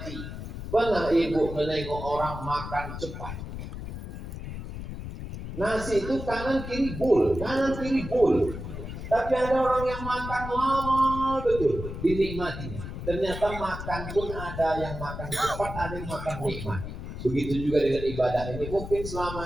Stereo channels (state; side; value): noise; left; rumble, 8 dB below the sound